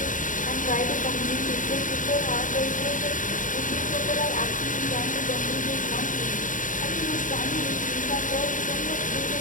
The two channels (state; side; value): late; right; 0.38 ms